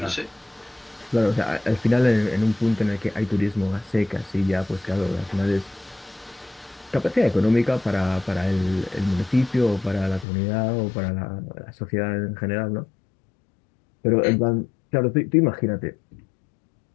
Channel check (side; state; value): right; drops out; at 10.2 s